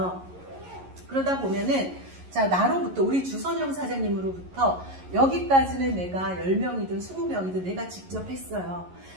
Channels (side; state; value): left; late; 11 ms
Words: 그러다 보면은 자, 나로부터 우리 주선영 사장님으로부터 여기까지는 내가 10명이든 20명이든 내가 직접 했어요.